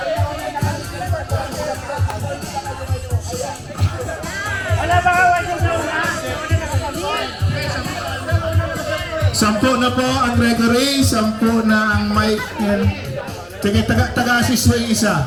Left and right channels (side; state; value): both; identical; correlation 1.00